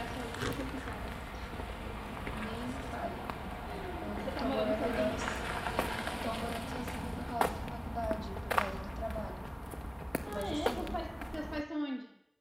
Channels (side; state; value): both; identical; correlation 1.00